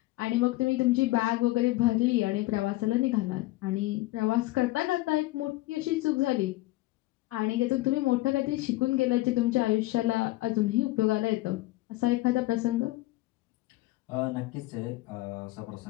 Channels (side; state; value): right; quieter; 19.0 dB